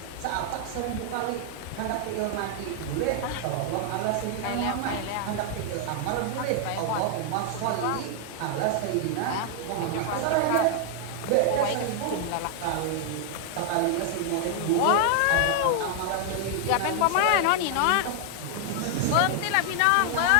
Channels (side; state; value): both; different; correlation 0.00